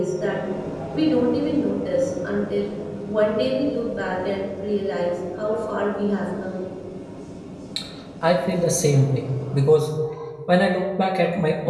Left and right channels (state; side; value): identical; both; correlation 1.00